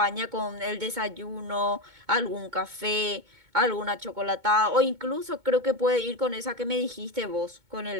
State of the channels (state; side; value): late; left; 2.2 ms